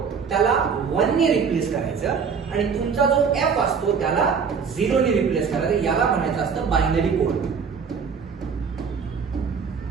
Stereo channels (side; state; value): left; quieter; 6.1 dB